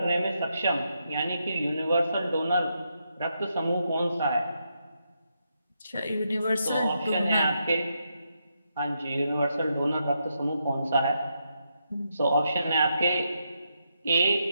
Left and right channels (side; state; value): both; inverted; correlation -0.81